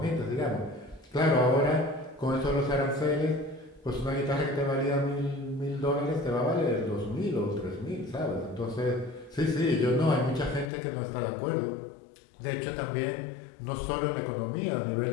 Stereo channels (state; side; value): drops out; right; at 10.7 s